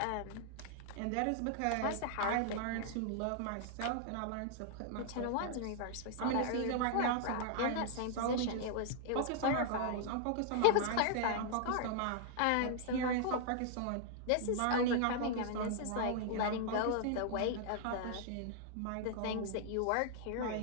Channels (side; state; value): both; different; correlation -0.01